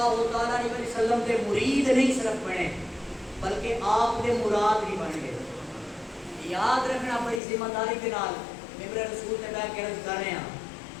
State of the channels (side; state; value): right; drops out; at 7.4 s